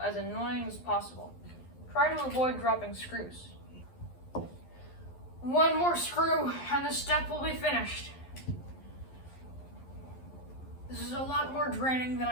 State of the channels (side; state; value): right; late; 11 ms